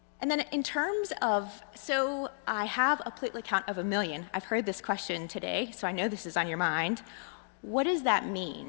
And then in terms of, so I have a platelet count of 1 million. I've heard this question today, so I know this is on your mind. What does that mean?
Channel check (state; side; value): silent; right; digital silence